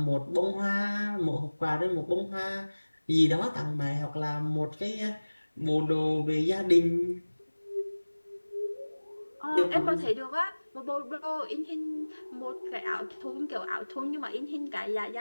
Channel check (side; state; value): both; inverted; correlation -1.00